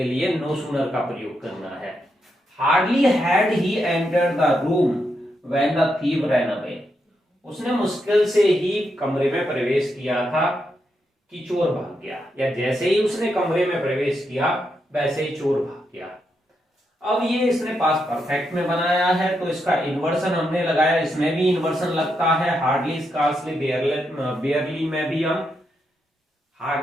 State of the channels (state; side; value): normal; both; correlation 0.82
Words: लिए नो सूनर का प्रयोग करना है। Hardly had he entered the room when the thief ran away, उसने मुश्किल से ही कमरे में प्रवेश किया था कि चोर भाग गया, या जैसे ही उसने कमरे में प्रवेश किया वैसे ही चोर भाग गया। अब ये इसने पास्ट परफेक्ट में बनाया है तो इसका इन्वर्सन हमने लगाया, इसमें भी इन्वर्सन लगता है। हार्डली, स्कार्सली, बेयरली में भी हम